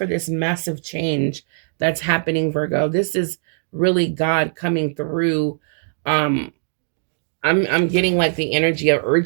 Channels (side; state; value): left; silent; digital silence